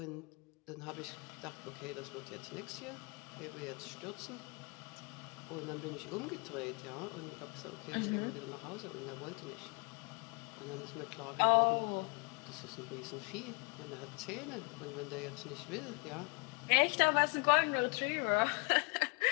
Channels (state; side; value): quieter; right; 31.4 dB